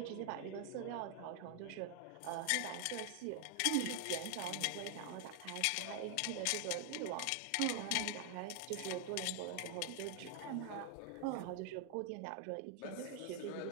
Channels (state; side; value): different; both; correlation 0.00